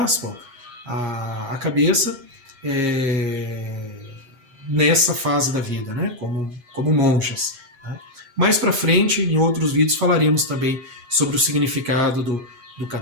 a cabeça nessa fase da vida, né? como monjas. Né? Mais para frente, em outros vídeos, falaremos também sobre o significado do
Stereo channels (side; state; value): left; late; 7.5 ms